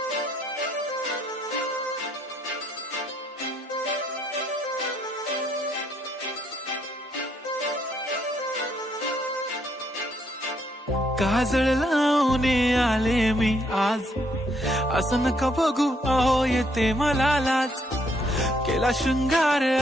लावून आले मी आज, असं नका बघू अहो येते मला लाज. केला शृंगार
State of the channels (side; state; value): both; normal; correlation 0.72